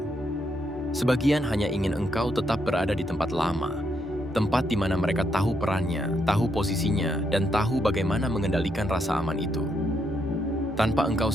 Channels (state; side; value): normal; both; correlation 0.77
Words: Sebagian hanya ingin engkau tetap berada di tempat lama, tempat di mana mereka tahu perannya, tahu posisinya, dan tahu bagaimana mengendalikan rasa aman itu. Tanpa engkau